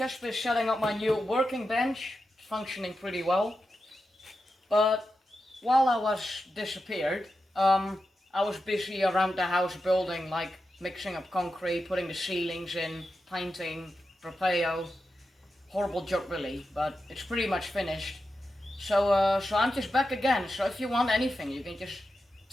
been setting up my new working bench. It's functioning pretty well. But while I was disappeared, I was busy around the house building, like mixing up concrete, putting the ceilings in, painting, propeo. Horrible job really, but it's pretty much finished. So I'm just back again. So if you want anything, you can just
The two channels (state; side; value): normal; both; correlation 0.89